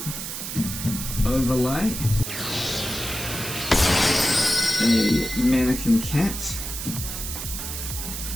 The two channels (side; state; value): right; noise; hiss, 6 dB below the sound